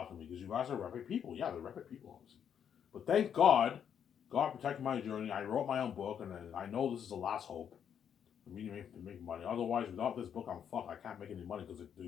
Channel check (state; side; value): quieter; right; 8.4 dB